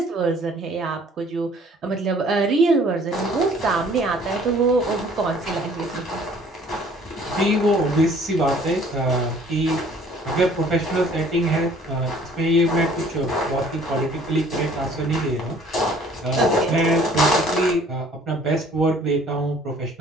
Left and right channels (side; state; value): both; normal; correlation 0.55